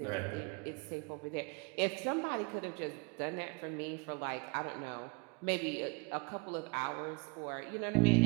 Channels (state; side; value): quieter; left; 29.0 dB